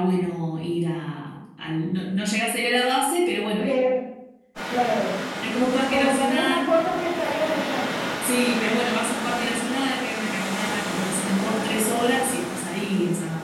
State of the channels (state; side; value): identical; both; correlation 1.00